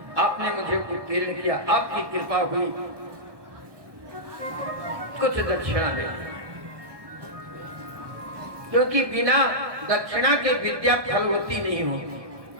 आपने मुझे उत्तीर्ण किया, आपकी कृपा हुई, कुछ दक्षिणा दे, क्योंकि बिना दक्षिणा के विद्या फलवती नहीं होती।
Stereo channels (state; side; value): late; left; 1.2 ms